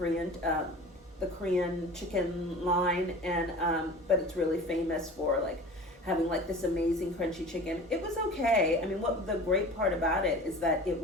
chicken line, and but it's really famous for like having like this amazing crunchy chicken. It was okay. I mean, what the great part about it is that it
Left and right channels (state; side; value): normal; both; correlation 0.39